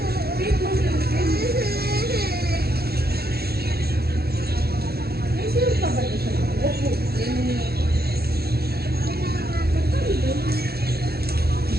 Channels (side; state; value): left; late; 0.46 ms